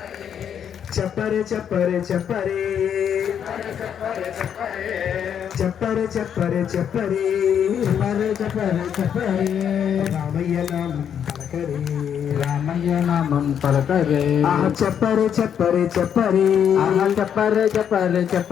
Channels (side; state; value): right; quieter; 8.5 dB